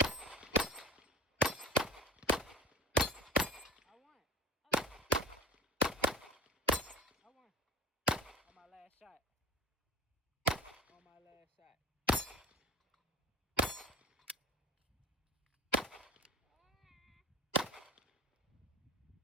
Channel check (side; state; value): both; normal; correlation 0.36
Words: I won. On my last shot. On my last shot.